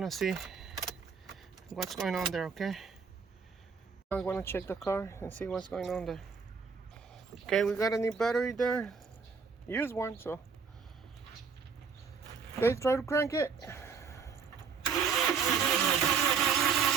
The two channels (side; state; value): left; quieter; 5.7 dB